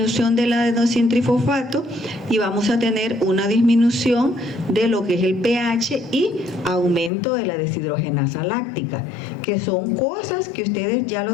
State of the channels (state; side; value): drops out; right; at 7.1 s